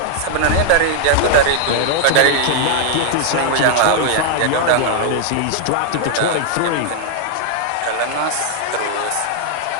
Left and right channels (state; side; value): different; both; correlation -0.01